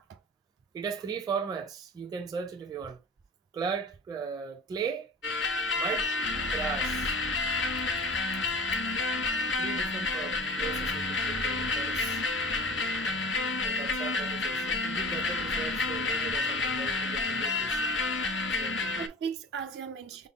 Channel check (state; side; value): normal; both; correlation 0.38